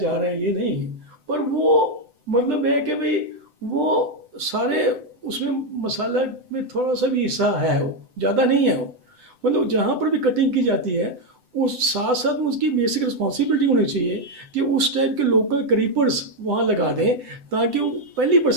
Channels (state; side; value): late; left; 7.9 ms